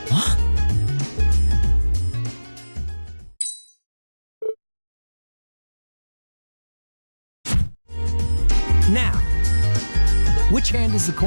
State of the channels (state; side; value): inverted; both; correlation -1.00